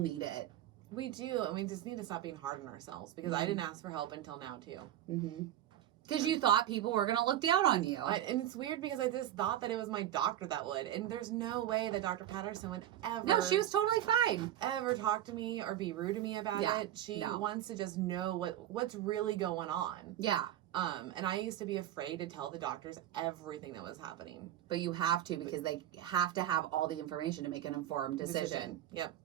it. We do. And we just need to stop being hard on ourselves because I didn't ask for help until now too. Because you thought people were going to look down on you. And it's weird because I just thought that it was my doctor that would. And there's no way that Dr. Patterson would ever. No, she was totally fine. Ever talk to me or be rude to me about it. She wants to just know what's really going on. Yeah. And I used to be afraid to tell the doctors everything that was happening. But you have to because they have to have all the information to make an informed decision. Yep.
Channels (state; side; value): quieter; left; 12.2 dB